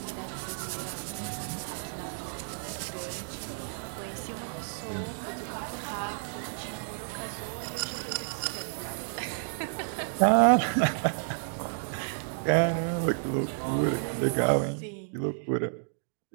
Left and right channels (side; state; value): left; silent; digital silence